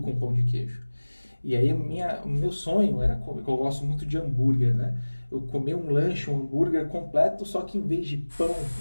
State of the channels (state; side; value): inverted; both; correlation -1.00